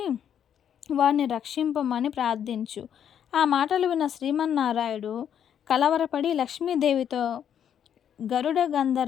వారిని రక్షింపమని ప్రార్థించు. ఆ మాటలు విన్న శ్రీమన్నారాయణుడు కలవరపడి లక్ష్మీదేవితో, గరుడ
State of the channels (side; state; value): right; quieter; 9.1 dB